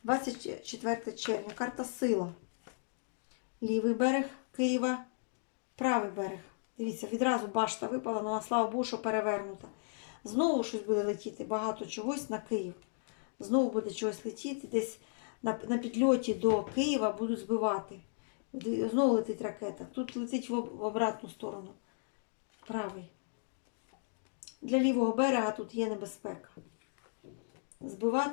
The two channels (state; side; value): silent; right; digital silence